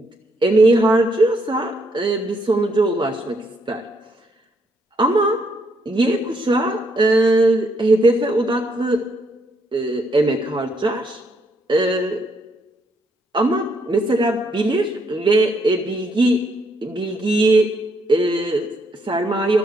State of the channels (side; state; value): both; normal; correlation 0.74